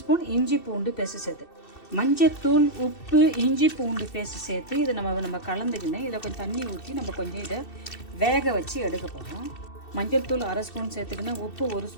ஸ்பூன் இஞ்சி பூண்டு பேஸ்ட் சேர்த்து, மஞ்சத்தூள், உப்பு, இஞ்சி பூண்டு பேஸ்ட் சேர்த்து இதை நம்ம கலந்துக்கினேன். இதில் கொஞ்சம் தண்ணி ஊற்றி நம்ம கொஞ்சம் இதை வேக வச்சு எடுக்க போகிறோம். மஞ்சள் தூள் 1/2 ஸ்பூன் சேர்த்துக்கினேன், உப்பு 1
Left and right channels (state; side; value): late; right; 2.7 ms